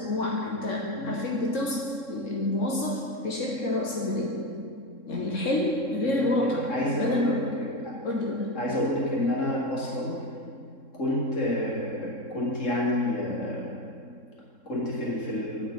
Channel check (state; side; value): late; right; 3.7 ms